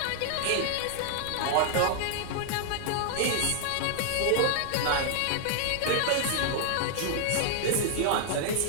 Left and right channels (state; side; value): different; both; correlation -0.01